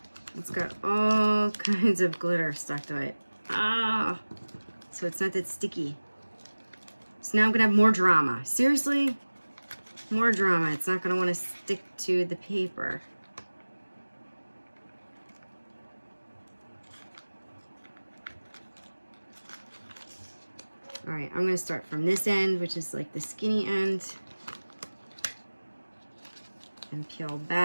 it's got all kinds of glitter stuck to it. So it's not that sticky. So now I'm gonna have more drama. Seriously? More drama. It's not gonna wanna stick to the paper. All right, I'm gonna start from this end, which is like the skinny end, and peel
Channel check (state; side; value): inverted; both; correlation -1.00